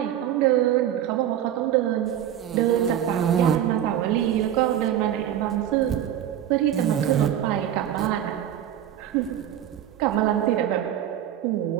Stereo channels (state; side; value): quieter; left; 10.8 dB